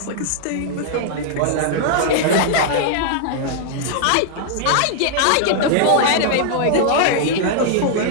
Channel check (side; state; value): both; different; correlation -0.01